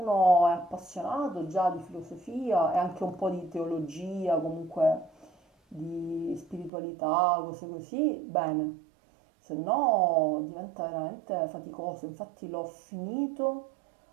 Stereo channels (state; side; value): drops out; left; at 6.7 s